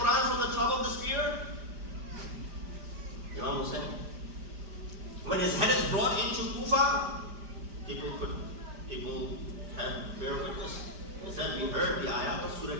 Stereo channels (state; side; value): late; left; 5.0 ms